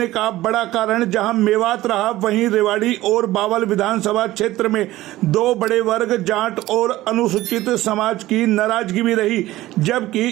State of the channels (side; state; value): left; quieter; 16.3 dB